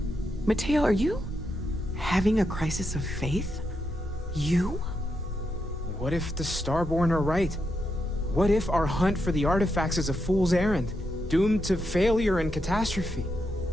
Mateo, are you having a crisis of faith? You? What if the Starborn are right? What if our hunt for the artifacts is a fool's errand, doomed to failure and catastrophe?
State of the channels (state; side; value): normal; both; correlation 0.83